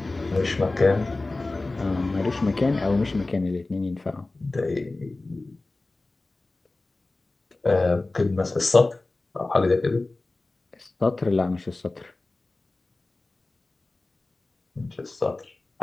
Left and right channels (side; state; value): right; quieter; 3.1 dB